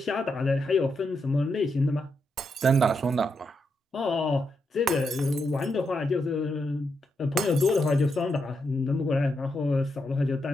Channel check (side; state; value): both; normal; correlation 0.82